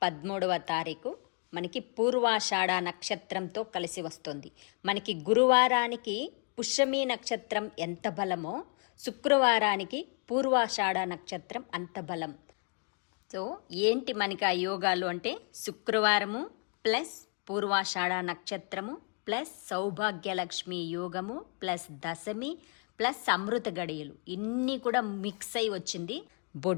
13వ తారీఖు మనకి పూర్వాషాఢ నక్షత్రంతో కలిసి వస్తుంది. మనకి గురువారానికి పుష్యమి నక్షత్రం ఎంత బలమో శుక్రవారానికి పూర్వాషాఢ నక్షత్రం అంత బలం. సో ఏంటి మనకి ఆ యోగాలు అంటే శుక్రవారము ప్లస్ పూర్వాషాఢ నక్షత్రము ప్లస్ సౌభాగ్యలక్ష్మి యోగము ప్లస్ దశమి ప్లస్ అమృత గడియలు ఇన్ని కూడా మిక్స్ అయి వచ్చింది.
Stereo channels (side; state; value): right; quieter; 36.3 dB